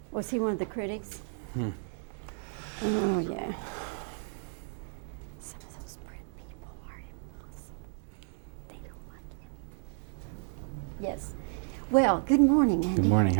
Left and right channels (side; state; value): left; silent; 56 dB below the other